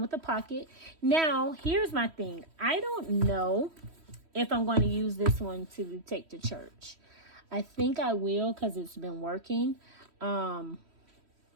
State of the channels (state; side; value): late; left; 3.1 ms